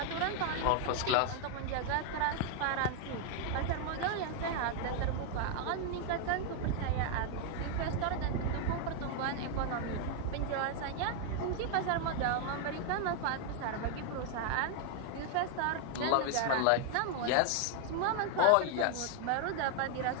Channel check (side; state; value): both; different; correlation 0.00